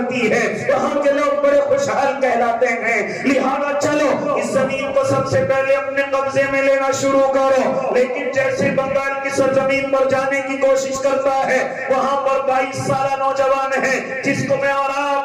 ہے، وہاں کے لوگ بڑے خوشحال کہلاتے ہیں، لہذا چلو اس زمین کو سب سے پہلے اپنے قبضے میں لینا شروع کرو۔ لیکن جیسے بنگال کی سرزمین پر جانے کی کوشش کرتا ہے، وہاں پر 22 سالہ نوجوان ہے جس کو میں اور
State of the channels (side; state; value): both; identical; correlation 1.00